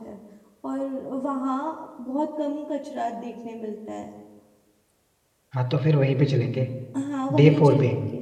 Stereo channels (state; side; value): identical; both; correlation 1.00